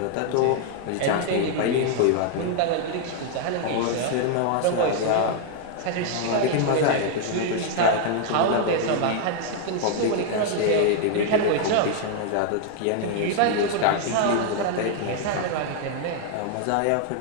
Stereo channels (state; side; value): different; both; correlation 0.00